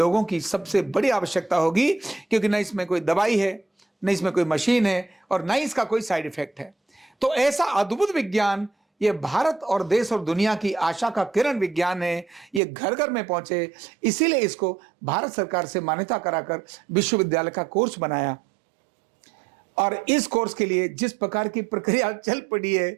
की सबसे बड़ी आवश्यकता होगी, क्योंकि न इसमें कोई दवाई है, न इसमें कोई मशीन है, और न इसका कोई साइड इफेक्ट है। तो ऐसा अद्भुत विज्ञान, ये भारत और देश और दुनिया की आशा का किरण विज्ञान है, ये घर घर में पहुंचे, इसीलिए इसको भारत सरकार से मान्यता कराकर विश्वविद्यालय का कोर्स बनाया। और इस कोर्स के लिए जिस प्रकार की प्रक्रिया चल पड़ी है,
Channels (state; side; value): drops out; left; at 12.6 s